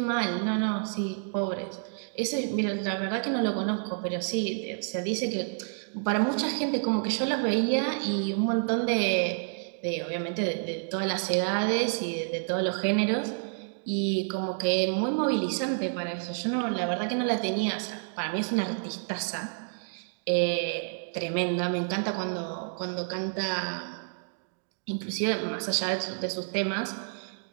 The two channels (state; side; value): silent; left; digital silence